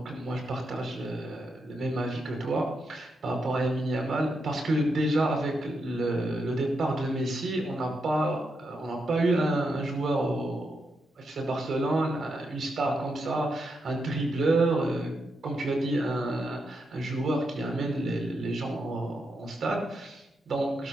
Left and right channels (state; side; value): normal; both; correlation 0.83